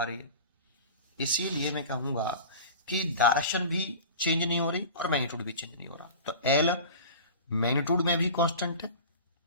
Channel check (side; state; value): both; inverted; correlation -0.36